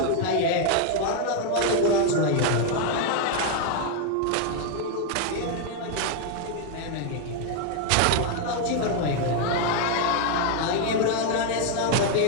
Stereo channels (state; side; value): different; both; correlation 0.01